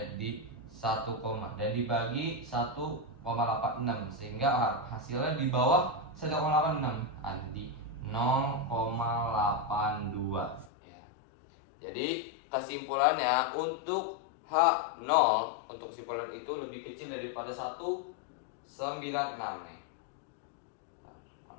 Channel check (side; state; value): right; drops out; at 10.7 s